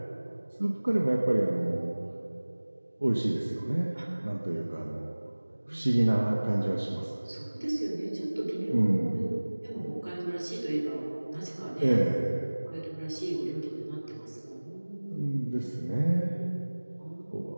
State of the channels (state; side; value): inverted; both; correlation -1.00